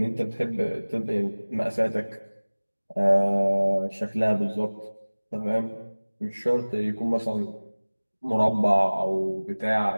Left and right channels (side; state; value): both; inverted; correlation -1.00